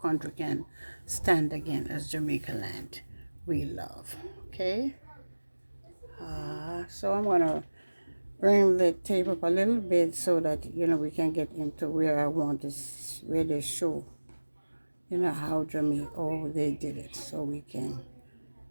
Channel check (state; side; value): inverted; both; correlation -1.00